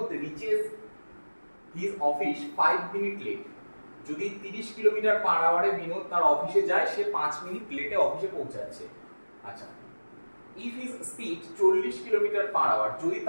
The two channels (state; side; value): inverted; both; correlation -1.00